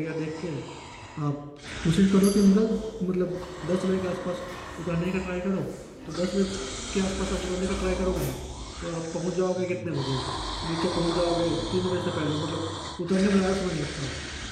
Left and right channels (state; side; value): identical; both; correlation 1.00